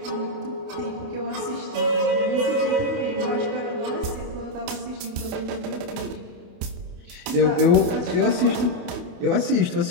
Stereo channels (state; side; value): late; left; 28 ms